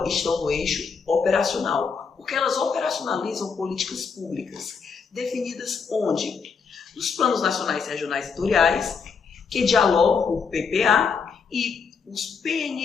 estão no eixo operacional, porque elas operacionalizam políticas públicas, definidas onde? Nos planos nacionais, regionais e setoriais, que dialogam com o PPA, e os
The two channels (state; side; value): quieter; right; 5.7 dB